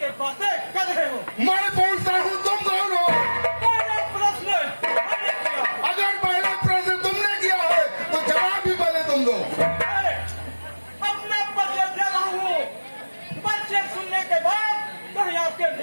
बातें कर रहे हो? मैं पूछता हूँ तुम कौन हो? पहला प्रश्न मैंने किया। अगर पहला प्रश्न तुमने किया है तो जवाब भी पहले तुम दो। अपना परिचय दे रहा हूँ, परिचय सुनने के बाद कहीं आपके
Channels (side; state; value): both; inverted; correlation -1.00